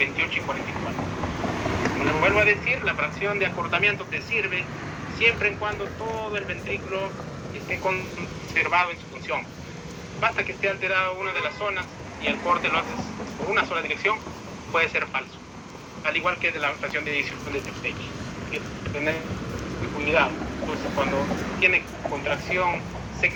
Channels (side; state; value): both; identical; correlation 1.00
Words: y 44. Como les vuelvo a decir, la fracción de acortamiento te sirve siempre en cuando todo el ventrículo esté conservado en su función. Basta que esté alterada una de las zonas y el corte lo haces por una sola dirección, puede ser falso. Al igual que de la fracción de eyección de Tage. Hay que tener cuidado. Entonces, cuando tiene contracción